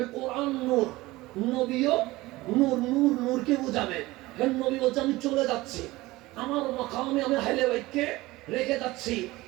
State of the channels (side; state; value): left; quieter; 19.4 dB